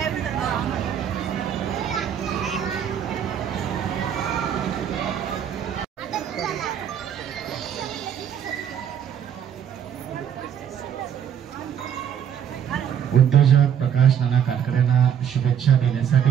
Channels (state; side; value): quieter; left; 8.9 dB